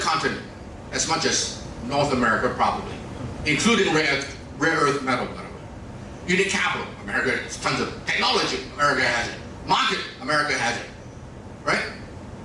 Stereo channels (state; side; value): identical; both; correlation 1.00